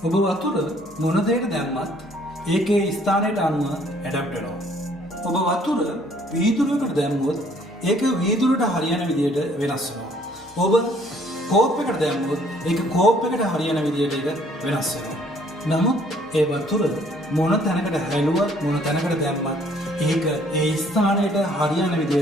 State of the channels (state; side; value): normal; both; correlation 0.61